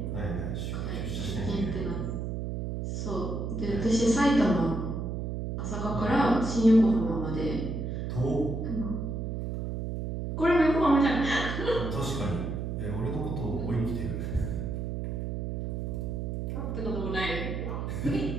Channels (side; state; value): right; noise; hum, 3 dB below the sound